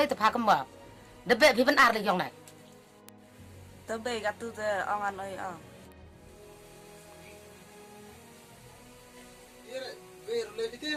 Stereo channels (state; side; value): identical; both; correlation 1.00